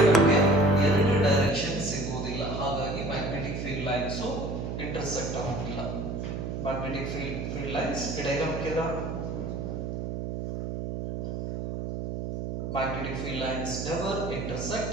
ನಮಗೆ ಎರಡು ಡೈರೆಕ್ಷನ್ ಸಿಗೋದಿಲ್ಲ. ಹಾಗಾಗಿ ಮ್ಯಾಗ್ನೆಟಿಕ್ ಫೀಲ್ಡ್ ಲೈನ್ಸ್ ಇಂಟರ್ಸೆಕ್ಟ್ ಆಗೋದಿಲ್ಲ. ಮ್ಯಾಗ್ನೆಟಿಕ್ ಫೀಲ್ಡ್ ಲೈನ್ಸ್ ಡೈಗ್ರಾಮ್ ಕೇಳ. Magnetic field lines never intersect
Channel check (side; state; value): right; noise; hum, 4 dB below the sound